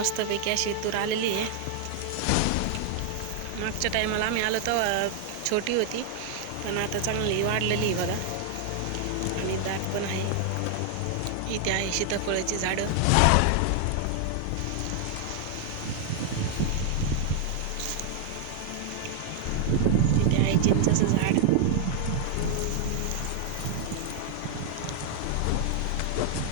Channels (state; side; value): different; both; correlation 0.00